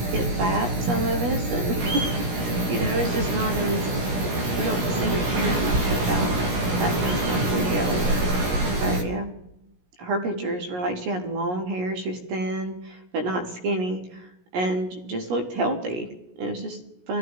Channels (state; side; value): late; left; 17 ms